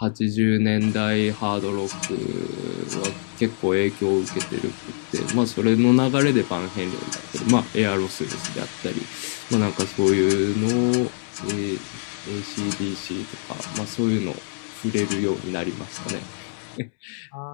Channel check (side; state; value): right; silent; digital silence